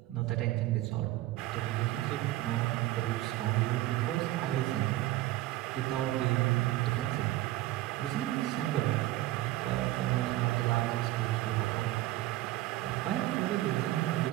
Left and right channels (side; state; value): left; quieter; 16.3 dB